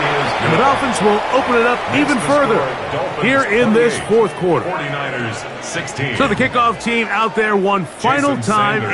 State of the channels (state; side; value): identical; both; correlation 1.00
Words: And the Dolphins will open it up even further here in this fourth quarter. 49ers 16. So the kickoff team out there one final time